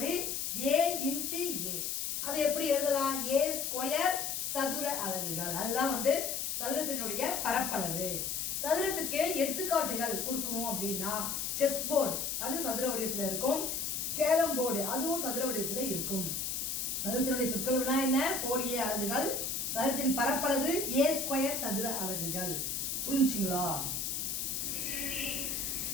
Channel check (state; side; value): noise; left; hiss, 2 dB below the sound